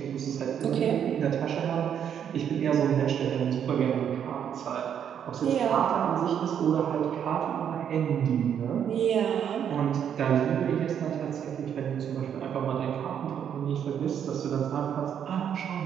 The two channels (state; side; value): quieter; left; 8.7 dB